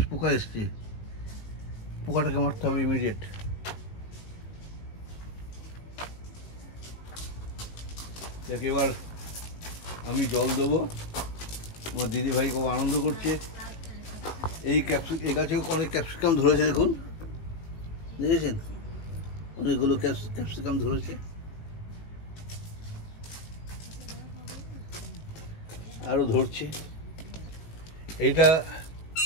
এসছে, পোকাটাকে মারতে হবে ইমিডিয়েট। যাকে এবার আমি জল দেবো। আমার দিদিভাই খুব আনন্দ করছে। এই গাছেও অনেক ক্যাপসিকাম ধরেছে, দেখুন, দেখেছেন অনেকগুলো ক্যাপসিকাম ধরেছে। আরো ধরছে। এইটা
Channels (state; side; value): late; right; 18 ms